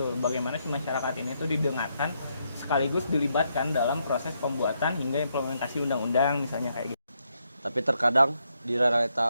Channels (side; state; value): both; inverted; correlation -0.78